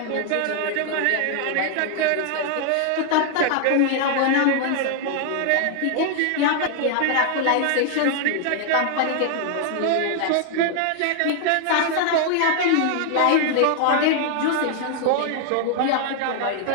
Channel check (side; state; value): both; different; correlation 0.00